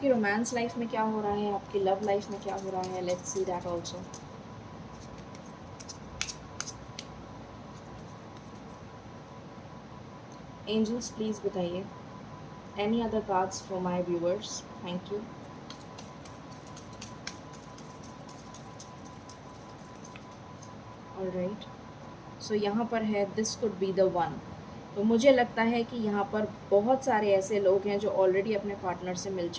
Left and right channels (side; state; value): both; identical; correlation 1.00